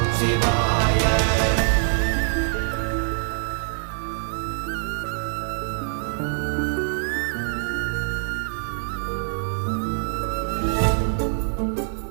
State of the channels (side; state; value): left; silent; digital silence